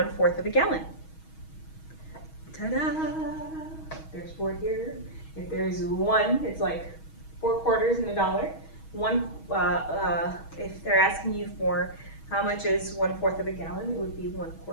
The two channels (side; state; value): right; late; 6.3 ms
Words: of a gallon? Ta-da! There's 4 here. If there's 1, it's like 4 quarters in a dollar. If they're asking you for how much is 1/4 of a gallon, it would be 1